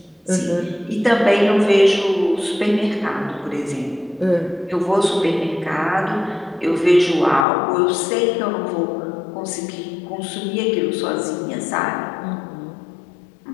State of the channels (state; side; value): drops out; right; at 7.5 s